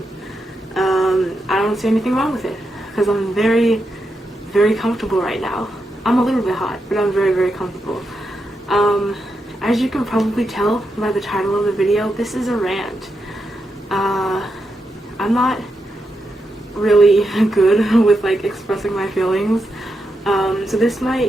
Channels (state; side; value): normal; both; correlation 0.85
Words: I don't see anything wrong with it, because I'm very, very comfortable right now. I'm a little bit hot, but I'm very, very comfortable. As you can probably tell by the title of the video, this is a rant. I'm not really good with like expressing my feelings, so this